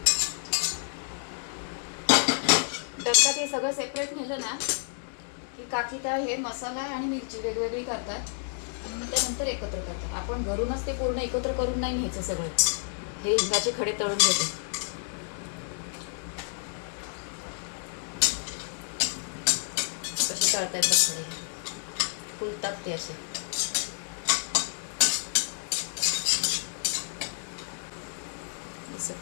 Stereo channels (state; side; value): silent; right; 58 dB below the other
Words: डब्यात हे सगळं सेपरेट नेलं ना की काकी त्या हे मसाला आणि मिरची वेगवेगळी करतात आणि मग त्यानंतर एकत्र करतात. आपण घरूनच ते पूर्ण एकत्र करून नाही न्यायचं सगळं. हे हिंगाचे खडे तळून घेते. कशी तळतायत बघ खडे, फुलतात ते असे. असं